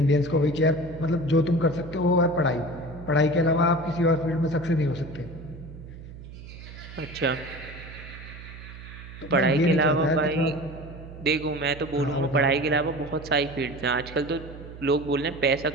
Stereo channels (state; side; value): noise; right; hum, 14 dB below the sound